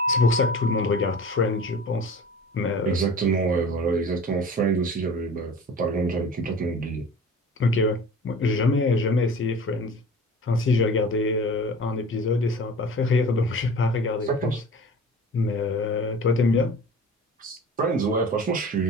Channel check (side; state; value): both; normal; correlation 0.40